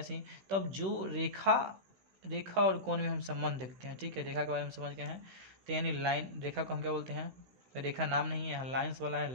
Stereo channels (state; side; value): late; left; 16 ms